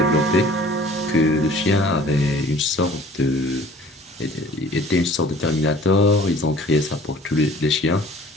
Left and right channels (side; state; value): both; normal; correlation 0.50